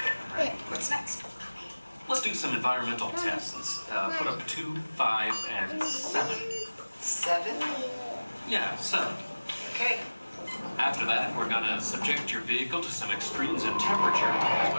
What's next? Let's do some environmental tests. Put up 2, 5, and 7. 7? Yeah, 7. Okay. After that, we're gonna subject your vehicle to some extremes in temperature, as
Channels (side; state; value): both; inverted; correlation -1.00